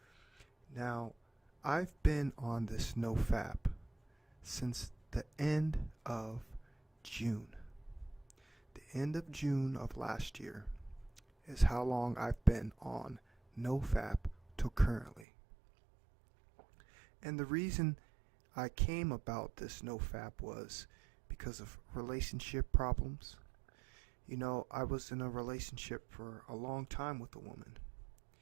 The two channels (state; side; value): drops out; left; at 15.2 s